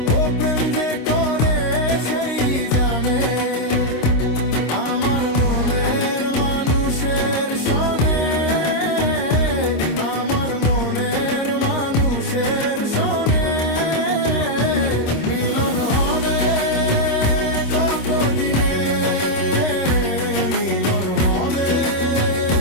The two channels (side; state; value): right; late; 26 ms